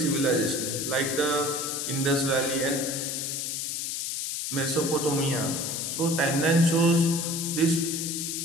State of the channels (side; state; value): left; noise; hiss, 3 dB below the sound